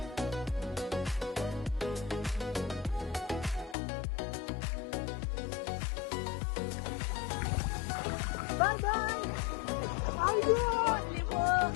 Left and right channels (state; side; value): drops out; right; at 3.8 s